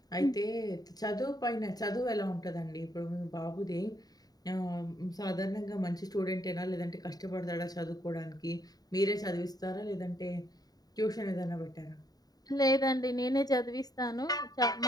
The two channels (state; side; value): late; right; 0.18 ms